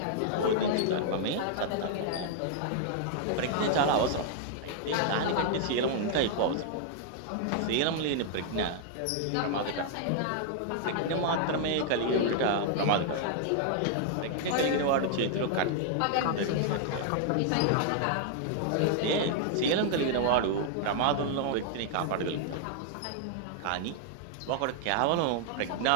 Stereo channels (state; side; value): different; both; correlation 0.00